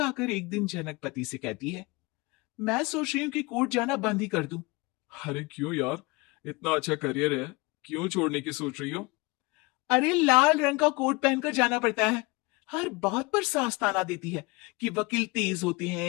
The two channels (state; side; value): quieter; right; 24.5 dB